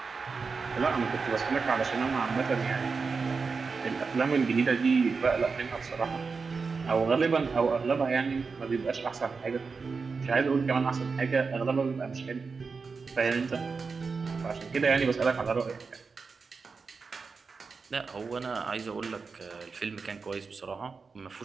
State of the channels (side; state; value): left; quieter; 4.8 dB